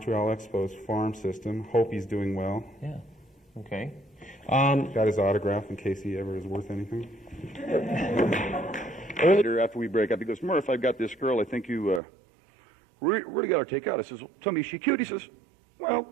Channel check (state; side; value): drops out; left; at 12.0 s